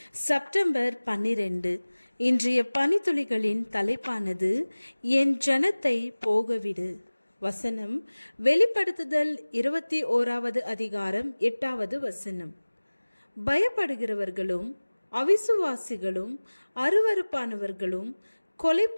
செப்டம்பர் 12 இன்றைய பனித்துளிகளின் தலைப்பானது என் ஜனத்தை போகவிடு. வசனம் வெளிப்படுத்துதல் 21வது அதிகாரம் 8வது வசனம். பயப்படுகிறவர்களும் அவிசுவாசிகளும் அருவருப்பானவர்களும்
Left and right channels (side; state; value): both; inverted; correlation -1.00